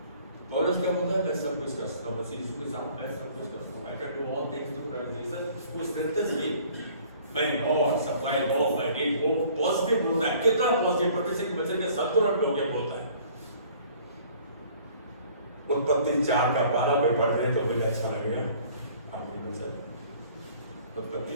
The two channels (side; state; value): both; inverted; correlation -0.54